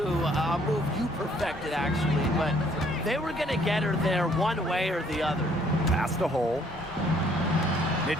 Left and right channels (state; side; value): normal; both; correlation 0.64